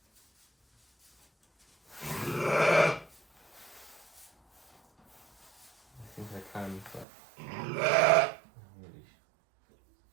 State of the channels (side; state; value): left; drops out; at 7.1 s